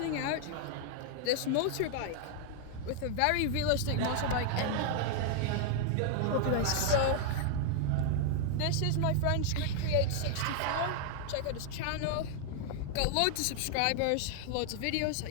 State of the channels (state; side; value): different; both; correlation 0.00